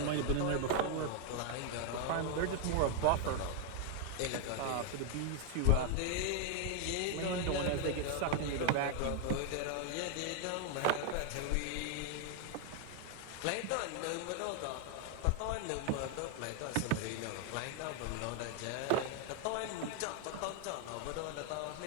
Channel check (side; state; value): both; different; correlation 0.00